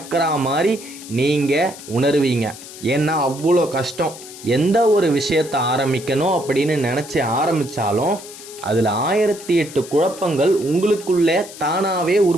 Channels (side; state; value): left; noise; hiss, 15 dB below the sound